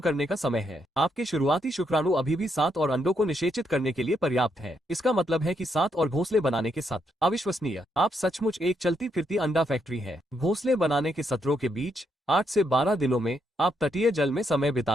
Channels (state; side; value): normal; both; correlation 0.77